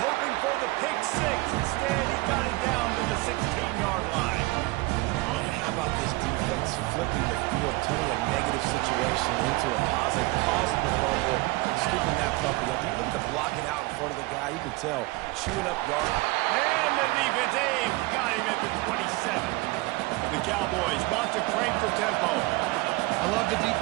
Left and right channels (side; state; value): left; quieter; 22.2 dB